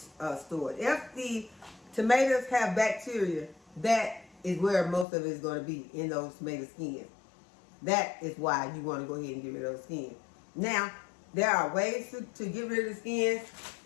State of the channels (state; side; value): drops out; right; at 5.1 s